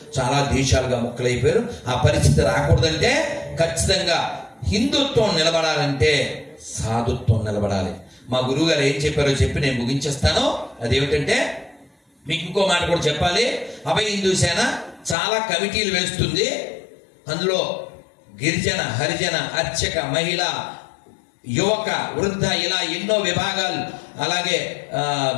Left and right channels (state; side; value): drops out; right; at 15.2 s